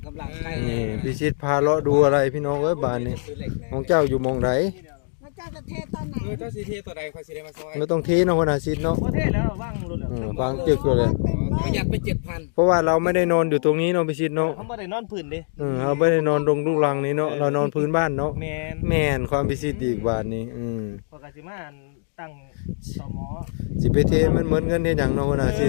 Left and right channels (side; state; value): right; silent; digital silence